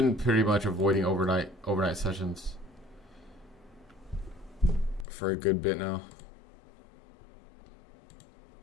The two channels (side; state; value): right; drops out; at 5.1 s